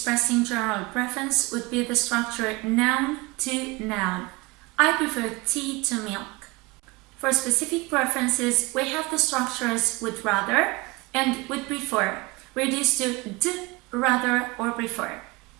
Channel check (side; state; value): left; quieter; 24.0 dB